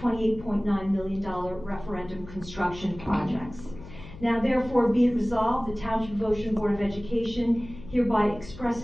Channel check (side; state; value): left; noise; hum, 15 dB below the sound